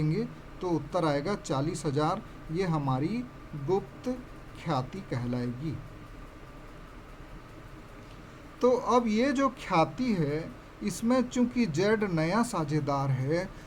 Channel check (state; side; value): identical; both; correlation 1.00